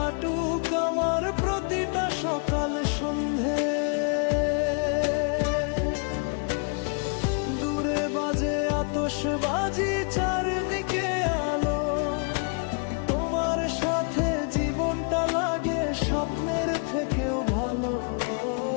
আমার প্রতিটা সকাল সন্ধে। দূরে বাজে আতশবাজি, চারদিকে আলো, তোমার সাথে জীবনটা লাগে স্বপ্নের থেকেও ভালো।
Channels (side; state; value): right; quieter; 37.8 dB